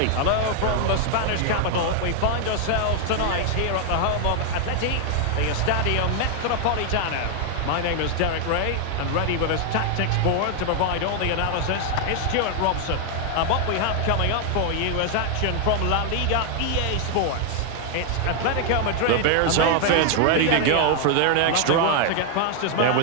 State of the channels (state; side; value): different; both; correlation 0.00